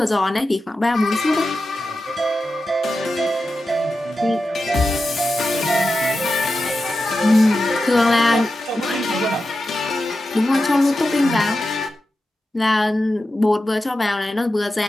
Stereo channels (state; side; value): normal; both; correlation 0.91